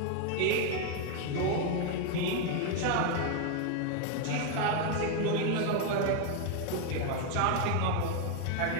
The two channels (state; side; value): different; both; correlation 0.01